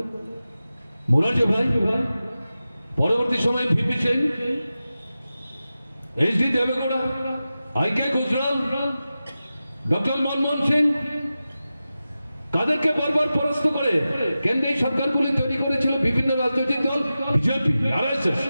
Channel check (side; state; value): both; inverted; correlation -0.94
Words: মোরারজি ভাই পরবর্তী সময়ে ভিপি সিং এইচডি দেবেগৌড়া আইকে গুজরাল ডক্টর মনমোহন সিং কাদেরকে বারবার পরাস্ত করে কেন্দ্রীয় সরকারগুলি তৈরি করেছিল বিভিন্ন রাজনৈতিক দল বিজেপি আরএসএস